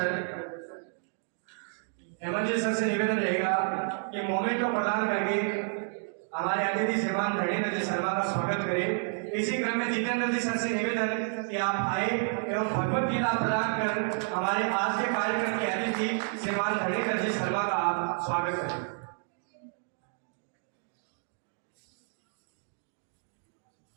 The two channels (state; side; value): silent; left; 58 dB below the other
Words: जी सर से निवेदन रहेगा कि मोमेंट को प्रदान करके हमारे अतिथि श्रीमान धरणीधर जी शर्मा का स्वागत करें। इसी क्रम में जितेंद्र जी सर से निवेदन कि आप आए एवं भगवत गीता प्रदान कर हमारे आज के कार्यक्रम के अतिथि श्रीमान धरणीधर जी शर्मा का आप स्वागत करें।